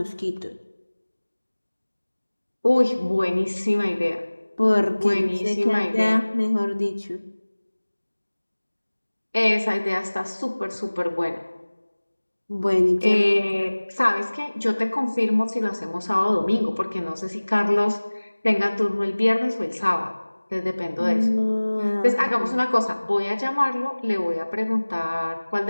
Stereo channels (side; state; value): both; inverted; correlation -1.00